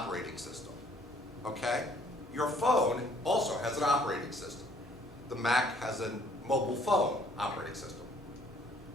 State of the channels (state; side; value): normal; both; correlation 0.61